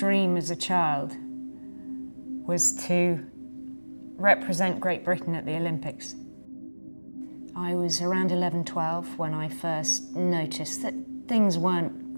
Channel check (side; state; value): both; inverted; correlation -1.00